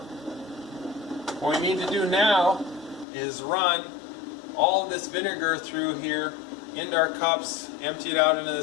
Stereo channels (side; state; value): right; drops out; at 3.1 s